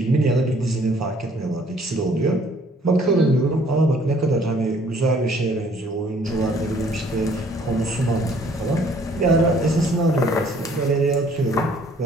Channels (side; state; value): both; normal; correlation 0.59